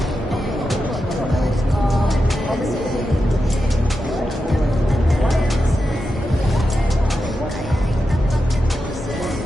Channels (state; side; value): normal; both; correlation 0.89